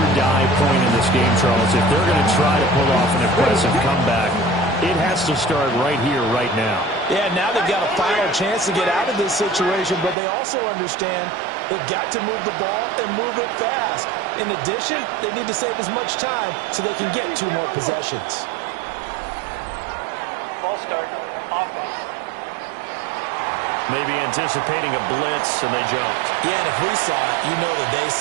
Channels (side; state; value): left; drops out; at 10.2 s